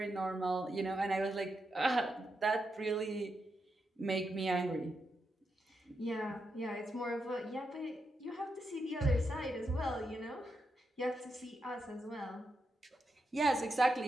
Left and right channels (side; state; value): both; normal; correlation 0.85